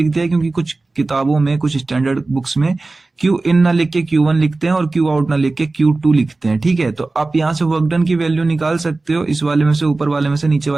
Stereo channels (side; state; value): left; quieter; 3.3 dB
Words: दिया है क्योंकि कुछ किताबों में, कुछ स्टैंडर्ड बुक्स में क्यू इन ना लिख के Q1 लिखते हैं और क्यू आउट ना लिख के Q2 लिखते हैं। ठीक है, तो आप यहाँ से वर्क डन की वैल्यू निकाल सकते हो, इस वाले में से ऊपर वाले में से नीचे